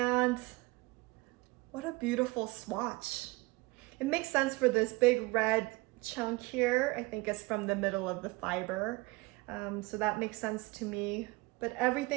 what a beautiful swatch. It makes sense for this big red chunk here. I think it's from the middle of the fiber. So that makes sense to me. But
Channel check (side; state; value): left; quieter; 23.3 dB